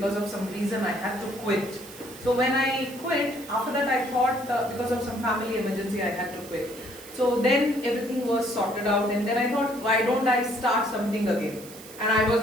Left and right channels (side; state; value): right; noise; hiss, 17 dB below the sound